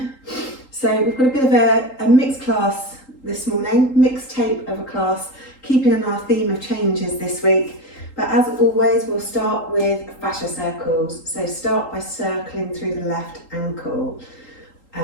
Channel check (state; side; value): late; right; 3.8 ms